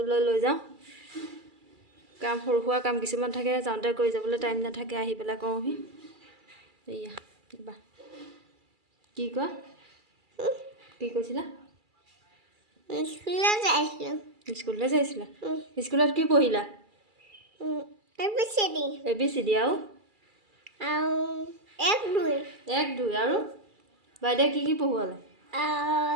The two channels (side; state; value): left; late; 2.3 ms